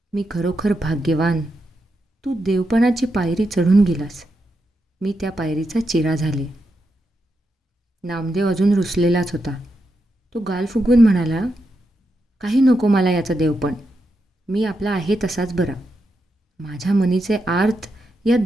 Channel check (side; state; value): both; normal; correlation 0.85